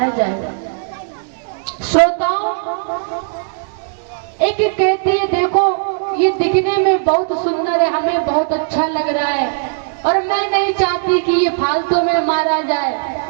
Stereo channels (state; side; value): silent; left; digital silence